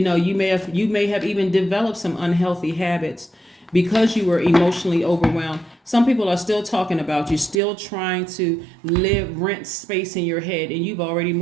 may have even developed some unhealthy habits because you were emotionally overwhelmed. Some people are still talking about you, still trying to rent space in your head, and you've already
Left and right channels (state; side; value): drops out; left; at 7.6 s